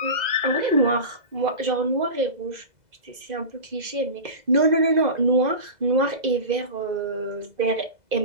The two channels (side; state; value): left; late; 2.0 ms